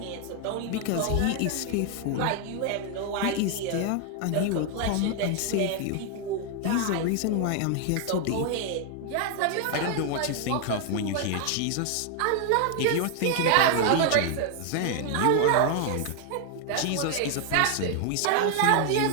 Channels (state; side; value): different; both; correlation 0.00